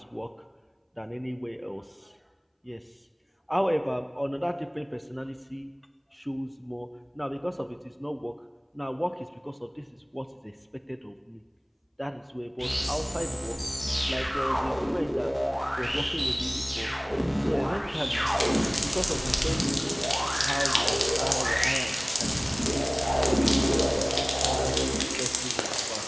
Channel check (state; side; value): identical; both; correlation 1.00